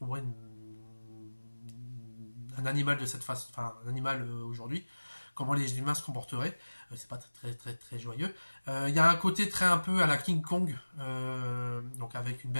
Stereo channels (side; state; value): both; inverted; correlation -1.00